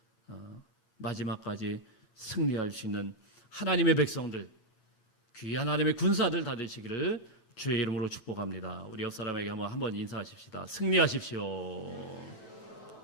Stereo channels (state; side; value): late; right; 9.1 ms